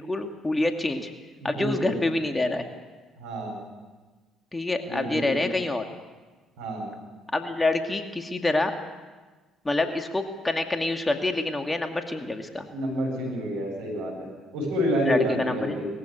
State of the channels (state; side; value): normal; both; correlation 0.82